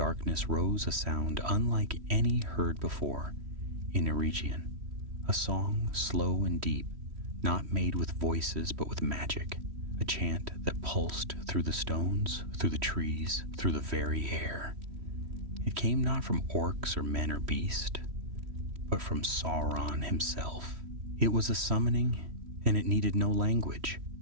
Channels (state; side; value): late; left; 3.1 ms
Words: rose a sound unlike any heard before in Eregion, a song slow and deep, not made with voices but with magic, a chant that pulsed through the stones, through the trees, through the very air. It came not from orcs or men or beast, but from Sauron himself. It was a summoning, and it needed no language.